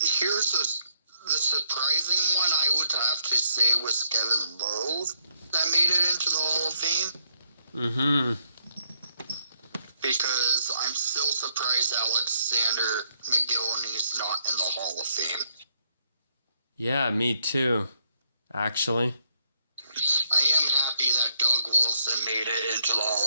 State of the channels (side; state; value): both; inverted; correlation -0.74